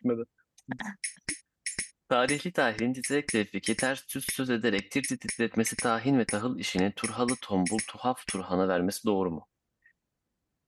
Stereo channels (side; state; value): both; identical; correlation 1.00